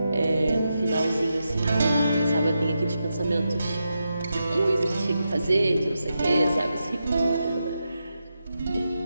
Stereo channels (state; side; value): inverted; both; correlation -0.87